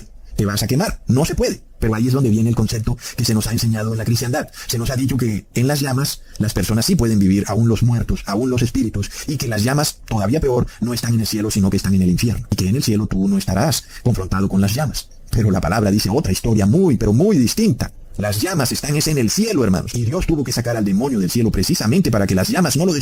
Te vas a quemar, no se puede. Pero ahí es donde viene el concepto que se nos ha enseñado en la cristiandad. Se nos ha dicho que en las llamas las personas sí pueden vivir, aún los muertos, aún los espíritus, y que las llamas, todavía peor, no están en el cielo, sino que están en el infierno. Y que en el cielo tú no estarás confrontado con las llamas. Pero la palabra dice otra historia muy, pero muy distinta. Las llamas están en el cielo, hermanos. Y Dios tuvo que sacar al demonio del cielo precisamente para que las llamas no lo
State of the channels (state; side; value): identical; both; correlation 1.00